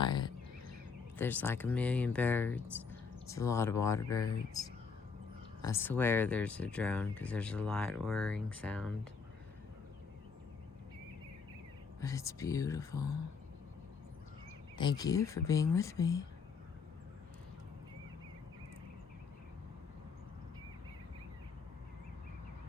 There's like a million birds. It's a lot of water birds. I swear there's a drone because there's a light whirring sound. But it's beautiful. Thank you for being with me.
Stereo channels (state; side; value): quieter; right; 5.3 dB